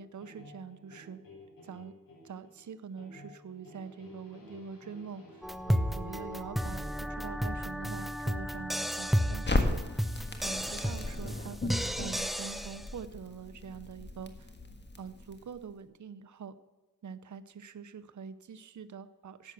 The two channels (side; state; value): both; normal; correlation 0.83